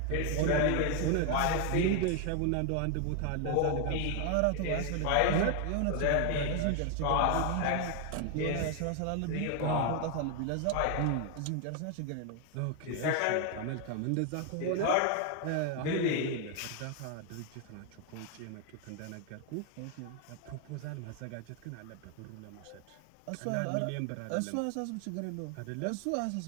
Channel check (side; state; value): both; different; correlation 0.01